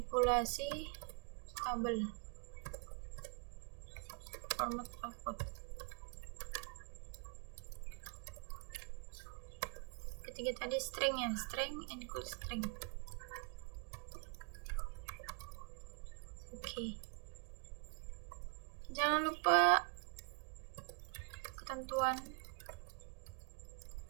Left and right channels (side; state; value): left; quieter; 36.0 dB